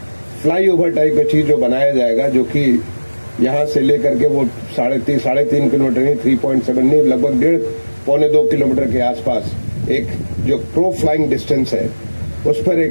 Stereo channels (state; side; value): inverted; both; correlation -1.00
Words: फ्लाईओवर टाइप की चीज जो बनाया जाएगा, जो कि यहाँ से लेकर के वो 3.5 किलोमीटर नहीं, 3.7 नहीं, लगभग 1.5-2 किलोमीटर के आसपास एक जो प्रो फ्लाइंग डिस्टेंस है उस पर